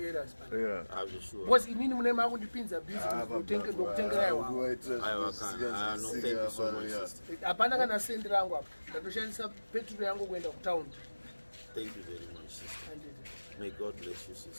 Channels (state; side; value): inverted; both; correlation -1.00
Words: man. Yeah. I'm sure. Because inini mune makundipinza business ndokutengera iwa Aiwa, can. No, thank you so much, sister. hapana kana sendi rangu apa ndatoshandisa petrol yangu kuenda kutaundi. Thank you very much, sister. May God bless you,